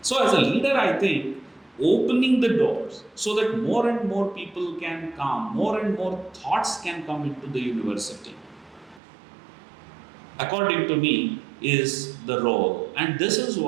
So as a leader, I think opening the doors so that more and more people can come, more and more thoughts can come into the university, according to me, is the role. And this is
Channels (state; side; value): drops out; left; at 9.0 s